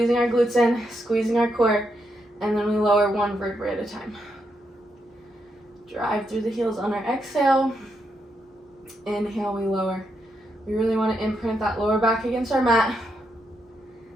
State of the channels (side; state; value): both; normal; correlation 0.81